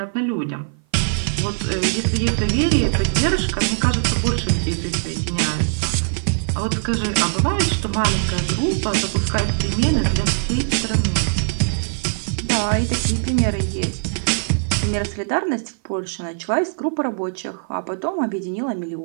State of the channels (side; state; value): left; silent; 56 dB below the other